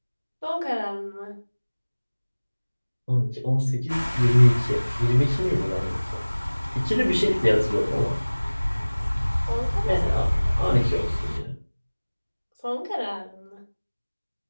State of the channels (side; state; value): both; inverted; correlation -1.00